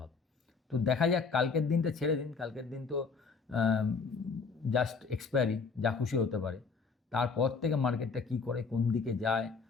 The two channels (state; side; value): quieter; right; 4.9 dB